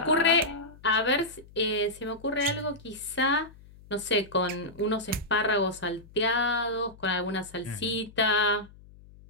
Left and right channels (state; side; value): noise; left; hum, 22 dB below the sound